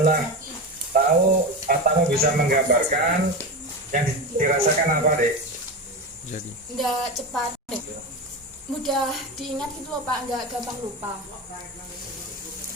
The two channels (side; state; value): both; normal; correlation 0.21